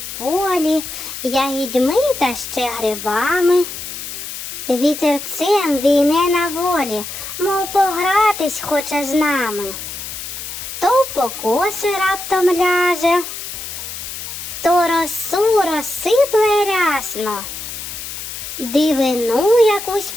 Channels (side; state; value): left; noise; hiss, 8 dB below the sound